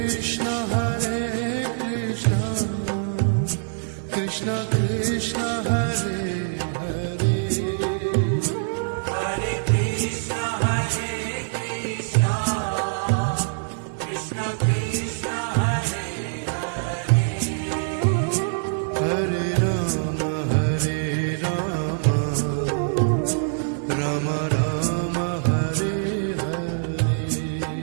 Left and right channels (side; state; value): left; silent; digital silence